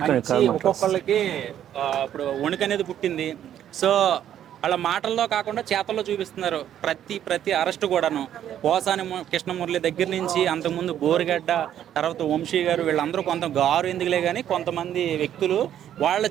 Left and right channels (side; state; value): left; quieter; 10.6 dB